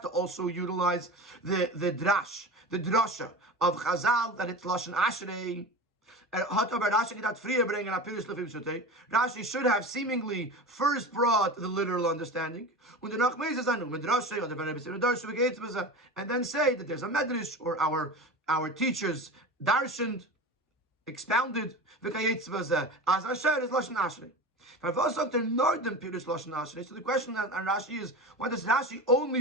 also utilize the drash, the drasha of Chazal, that it's Lashon Ashrei. Rashi should have seemingly first brought the literal understanding, and then say that there's a medrash, or our teachers darshaned, expounded, so the question on Rashi is, why does Rashi only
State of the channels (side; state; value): both; normal; correlation 0.30